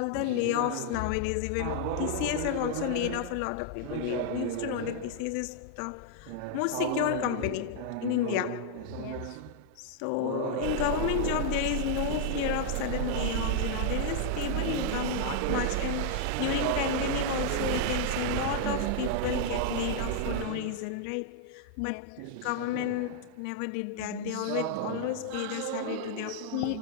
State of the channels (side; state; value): both; different; correlation -0.01